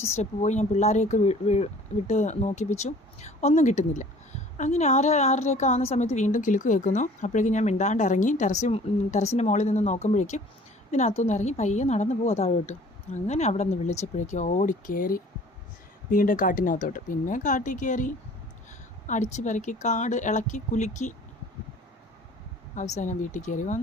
സ്റ്റെപ്പ് പോയി ഞാൻ പിള്ളേരെയൊക്കെ വിട്ട് നോക്കിപ്പിച്ചു. ഒന്നും കിട്ടുന്നില്ല. അങ്ങനെ 6:30 ആവുന്ന സമയത്ത് വീണ്ടും കിലുക്ക് കേൾക്കുന്നു. അപ്പോഴേക്കും ഞാൻ മിണ്ടാണ്ട് ഇറങ്ങി ടെറസിൻ്റെ മുകളിൽ നിന്ന് നോക്കുമ്പോഴേക്കും ഇതിനകത്തുനിന്ന് ഇറങ്ങി പയ്യെ നടന്നു പോവാ താഴോട്ട്. അങ്ങനെ അവിടെ നിന്ന് വിളിച്ചപ്പോഴേക്കും ഓടിക്കയറി വീണ്ടും കാട്ടിനകത്തോട്ട്. പിന്നെ കാട്ടിൽ കയറി അടിച്ച് പെരക്കി കാട് ഇളക്കി കുലുക്കി അവസാനം വീട്ടിൽ കയറി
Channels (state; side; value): normal; both; correlation 0.50